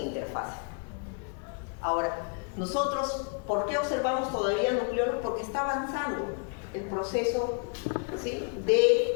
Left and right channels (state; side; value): quieter; right; 39.0 dB